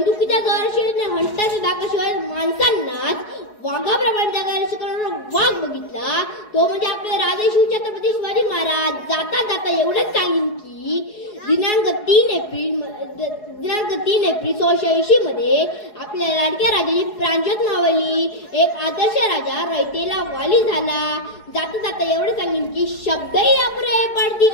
जोराशिवाय आणि हंटरच्या दाखाशिवाय माणसांनाच वाघाप्रमाणे जगायला शिकवणारा वाघ बघितला तो म्हणजे आपले राजे शिवछत्रपती शिवाजी महाराज. जाता जाता एवढंच सांगेन की दिनांक 3 एप्रिल 1680 मध्ये आपल्या लाडक्या राजाची प्राणज्योत मावळली. एक आदर्श राजा रयतेला वाली झाला. जाता जाता एवढं सांगेन की शब्दही अप्राय पडती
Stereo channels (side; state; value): right; late; 4.7 ms